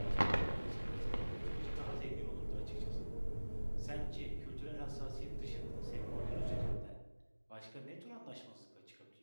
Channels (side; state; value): both; inverted; correlation -1.00